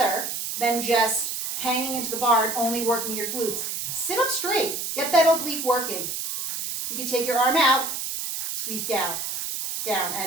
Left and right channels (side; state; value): right; noise; hiss, 4 dB below the sound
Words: than just hanging into the bar and only working your glutes. Sit up straight. Get that oblique working. You can take your arm out, squeeze down. Down